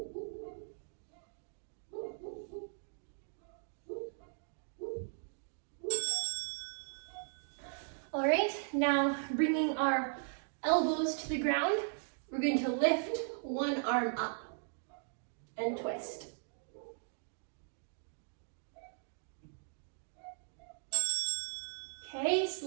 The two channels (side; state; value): left; silent; digital silence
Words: All right, now bringing our elbows to the ground, we're going to lift one arm up and twist. Okay,